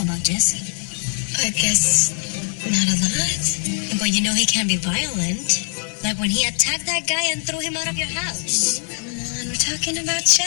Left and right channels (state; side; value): silent; right; 65 dB below the other